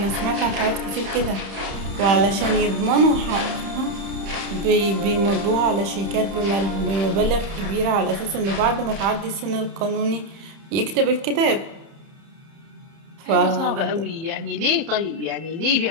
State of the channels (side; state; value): left; late; 30 ms